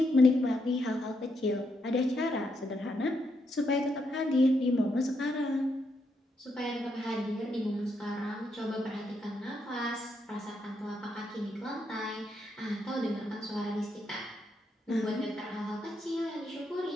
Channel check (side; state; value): both; normal; correlation 0.79